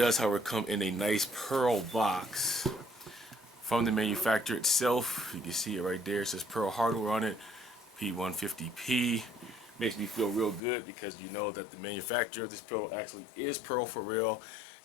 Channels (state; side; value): drops out; right; at 10.6 s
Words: however, come in a nice pearl box from the manufacturer itself. You can see it right there. It says Pearl hardware on it. P150P. Makes me feel real good because you know that the manufacturer of this pedal actually is Pearl for real,